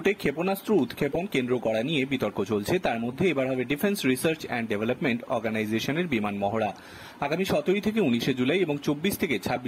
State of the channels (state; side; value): identical; both; correlation 1.00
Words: ক্ষেপণাস্ত্র উৎক্ষেপণ কেন্দ্র করা নিয়ে বিতর্ক চলছে। তার মধ্যে এবার হবে ডিফেন্স রিসার্চ অ্যান্ড ডেভেলপমেন্ট অর্গানাইজেশনের বিমান মহড়া। আগামী 17 থেকে 19 জুলাই এবং 24 থেকে